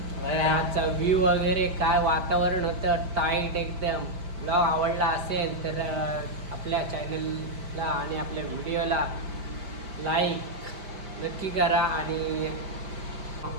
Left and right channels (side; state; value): left; late; 5.1 ms